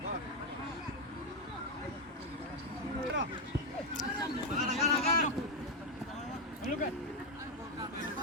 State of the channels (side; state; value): both; normal; correlation 0.04